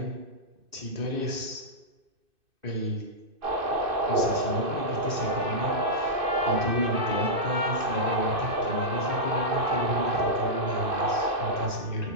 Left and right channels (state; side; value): late; left; 2.6 ms